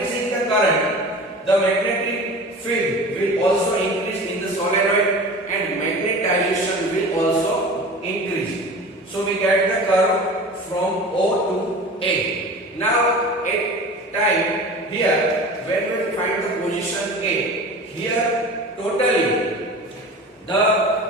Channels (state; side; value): normal; both; correlation 0.36